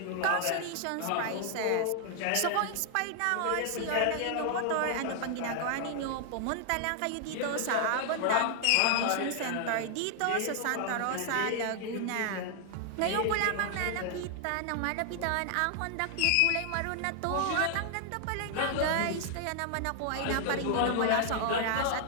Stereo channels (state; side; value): different; both; correlation 0.00